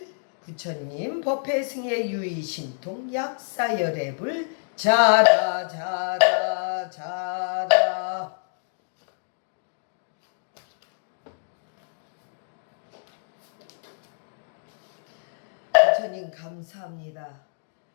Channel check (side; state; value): right; silent; digital silence